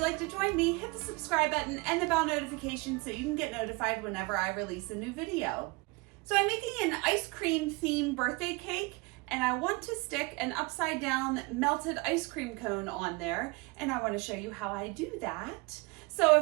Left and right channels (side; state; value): left; quieter; 26.5 dB